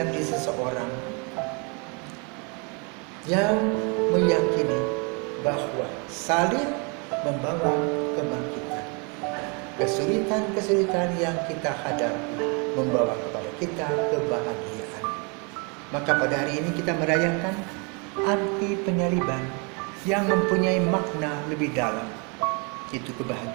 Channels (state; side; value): quieter; left; 33.4 dB